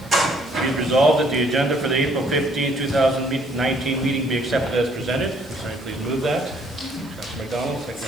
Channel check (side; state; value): right; noise; hiss, 25 dB below the sound